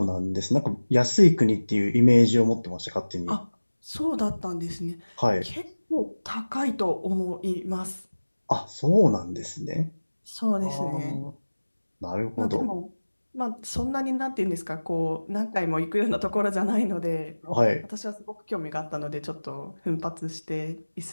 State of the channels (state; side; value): inverted; both; correlation -1.00